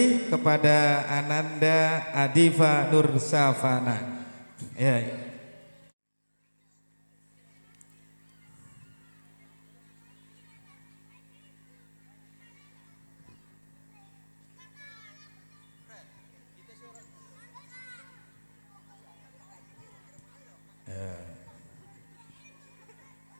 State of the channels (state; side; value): inverted; both; correlation -1.00